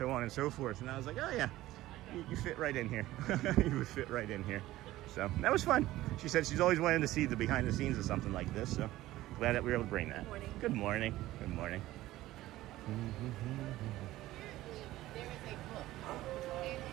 on and so forth. And I was like, oh, yeah, you fit right in here. You would fit right in here. So, that was fun. She said she's always wanted to see the behind the scenes of something like this. So, glad that we were able to bring that. Good morning. Good morning. Good morning. There is a book.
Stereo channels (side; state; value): left; quieter; 16.1 dB